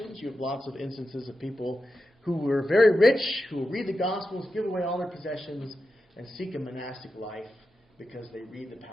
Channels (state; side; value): normal; both; correlation 0.90